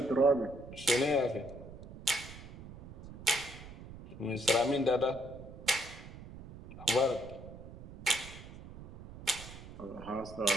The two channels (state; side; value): noise; right; rumble, 14 dB below the sound